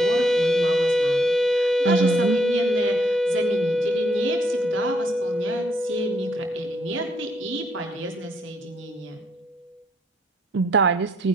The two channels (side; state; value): both; normal; correlation 0.71